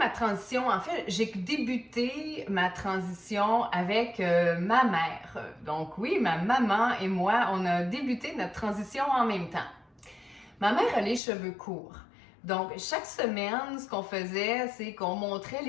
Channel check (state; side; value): drops out; right; at 11.2 s